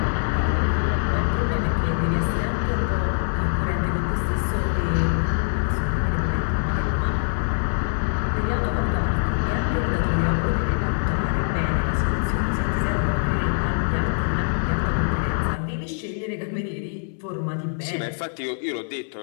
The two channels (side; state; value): right; silent; digital silence